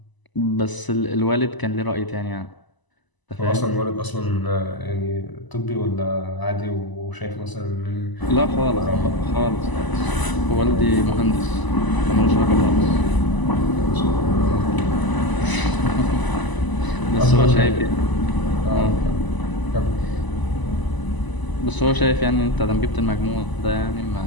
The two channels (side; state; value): right; late; 1.0 ms